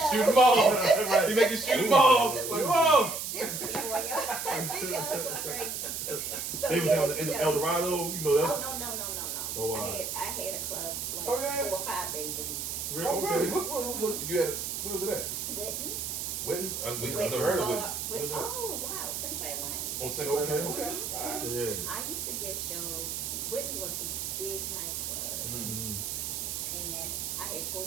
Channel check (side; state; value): right; noise; hiss, 4 dB below the sound